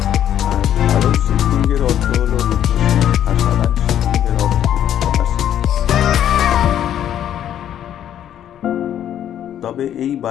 আর কালো শিবলিঙ্গের অর্থ হলো রুদ্রশিব, আর সাদা শিবলিঙ্গের অর্থ হলো সদাশিব। তবে এই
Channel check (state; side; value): quieter; right; 10.6 dB